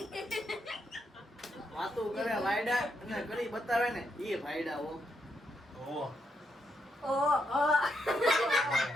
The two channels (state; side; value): normal; both; correlation 0.80